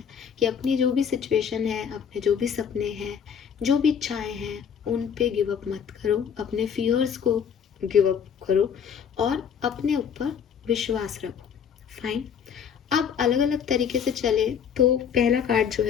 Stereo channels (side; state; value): right; quieter; 7.6 dB